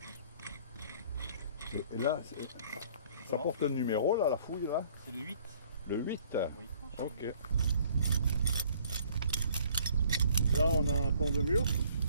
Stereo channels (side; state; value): both; inverted; correlation -0.58